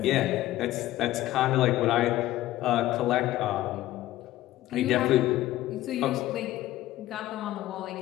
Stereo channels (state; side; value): quieter; right; 15.3 dB